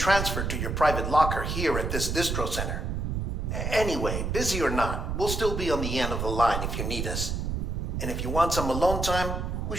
to your private locker here at this distro center. Anyway, busy or not, we'll still be on the end of the line if you need us. And if you want some alone time, we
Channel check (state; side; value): noise; right; rumble, 2 dB below the sound